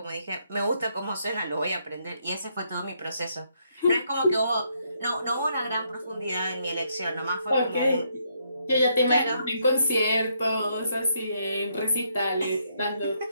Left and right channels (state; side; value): inverted; both; correlation -0.74